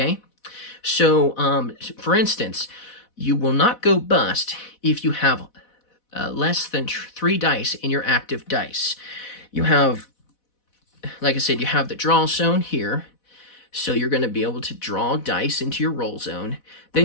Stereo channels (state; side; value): late; right; 4.1 ms